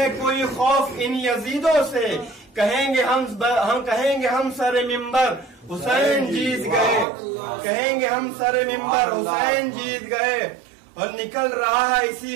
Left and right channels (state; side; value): drops out; left; at 7.1 s